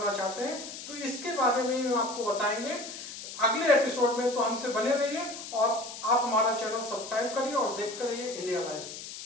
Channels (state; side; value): noise; left; hiss, 11 dB below the sound